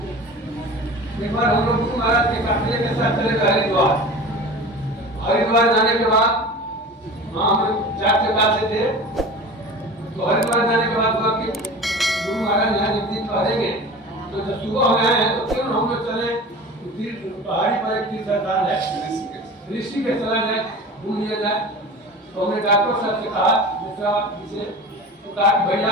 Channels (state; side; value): normal; both; correlation 0.36